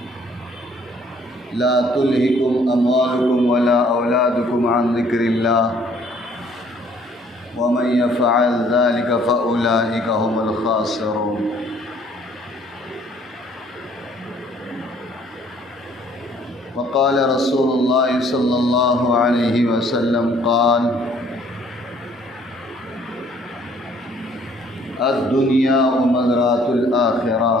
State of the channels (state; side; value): normal; both; correlation 0.60